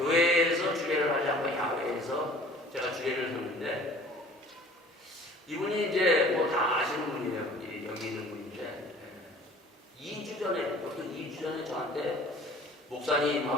주례를 하지 않고 야외에서 제가 주례를 섰는데 이분이 이제 뭐 다 아시는 분이에요. 여기 있는 분인데 2주 전에 어떤 2주 전에 저한테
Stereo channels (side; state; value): both; normal; correlation 0.49